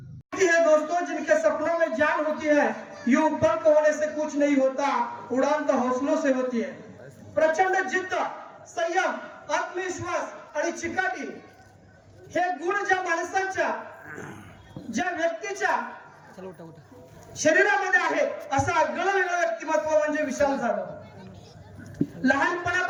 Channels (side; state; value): both; identical; correlation 1.00